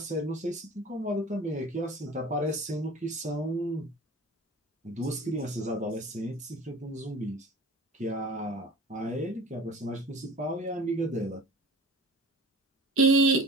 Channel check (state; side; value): normal; both; correlation 0.40